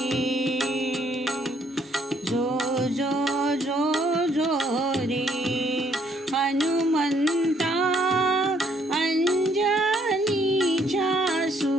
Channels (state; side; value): normal; both; correlation 0.68